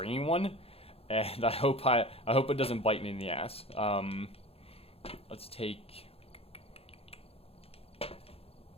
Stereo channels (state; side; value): late; right; 0.28 ms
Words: one. And I hope it doesn't bite me in the ass. Let's take...